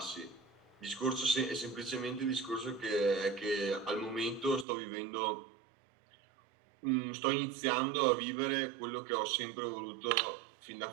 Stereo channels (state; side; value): drops out; left; at 4.7 s